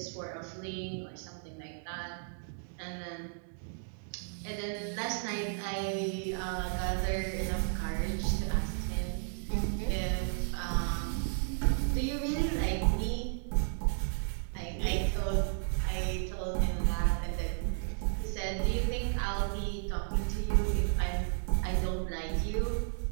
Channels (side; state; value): left; silent; digital silence